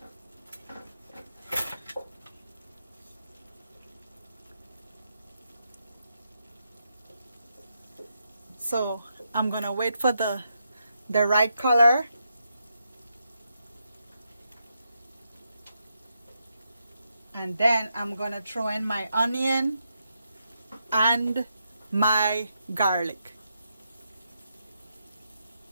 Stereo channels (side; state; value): both; inverted; correlation -0.82